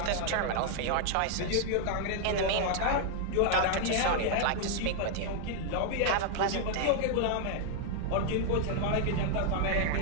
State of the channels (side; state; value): both; different; correlation 0.00